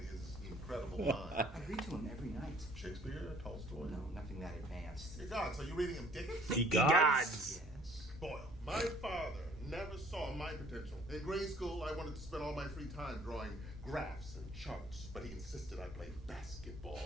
his incredible mind? I read to him every night. Shakespeare, Tolstoy? No, nothing that advanced. Hey, God, so you're reading him Dickens? He gods. Yes. Boyle, my father never saw my potential. In grade school, I wanted to spend all my free time drawing graphs and charts, but he insisted I play basketball,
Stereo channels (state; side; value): normal; both; correlation 0.56